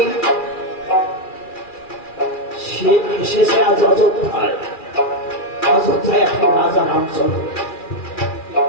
শেষে আজ অযোধ্যায় এখন রাজা রামচন্দ্র।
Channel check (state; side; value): late; right; 2.4 ms